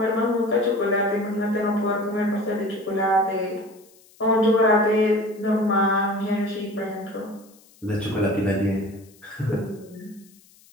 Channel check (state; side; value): noise; left; hiss, 28 dB below the sound